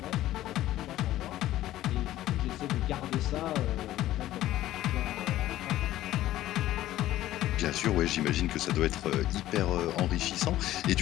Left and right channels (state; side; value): quieter; right; 14.4 dB